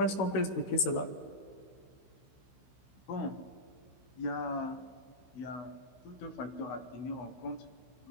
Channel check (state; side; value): late; right; 16 ms